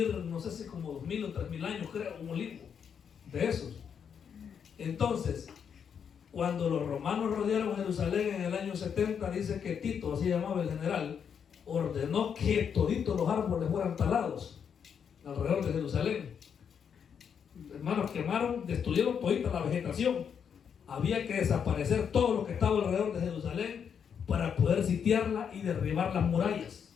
no sé si como 2000 o 3000 años, creo, un olivo de esos. Entonces, cuando los romanos rodearon Jerusalén en el año 70, dice que Tito, así llamaba el general, ordenó que toditos los árboles fueran talados alrededor de Jerusalén. Hermanos, quemaron, destruyeron todita la vegetación. Había que desaparecer todo lo que estaba alrededor de Jerusalén para poder sitiarla y derribar las murallas.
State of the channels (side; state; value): right; quieter; 7.4 dB